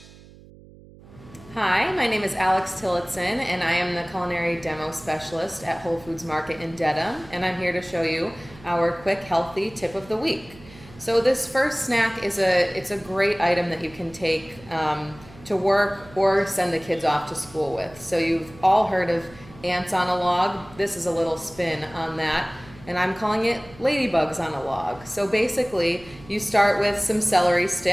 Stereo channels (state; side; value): noise; right; hum, 22 dB below the sound